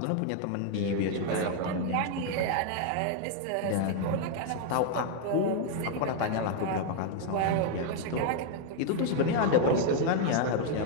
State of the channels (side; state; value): both; different; correlation 0.00